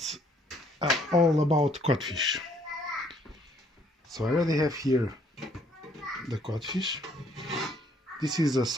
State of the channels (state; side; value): normal; both; correlation 0.65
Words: all about codfish. So I already have here the codfish. This is a